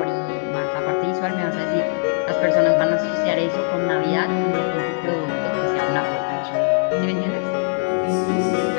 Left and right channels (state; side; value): silent; right; digital silence